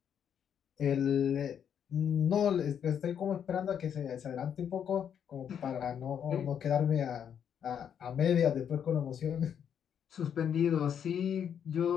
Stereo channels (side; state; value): right; quieter; 8.4 dB